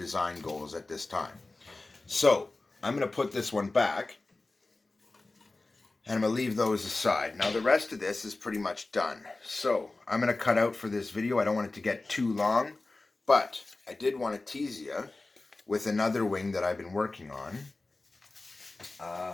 goals at this time. So I'm going to put this one back, and I'm going to leave those aside. Now the rest of this is pretty much done. So I'm going to cut out for this video. I don't want it to get too long, but I did want to tease you with another wing that I've been working on.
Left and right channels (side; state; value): right; quieter; 3.2 dB